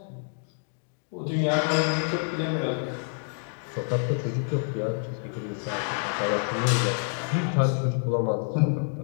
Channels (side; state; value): right; silent; digital silence